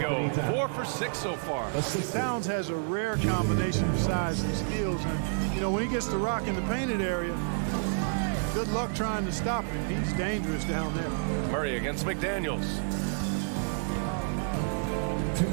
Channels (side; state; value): left; silent; digital silence